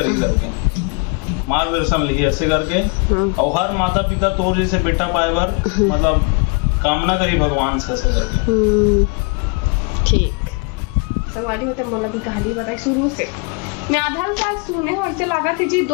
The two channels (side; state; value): right; quieter; 32.7 dB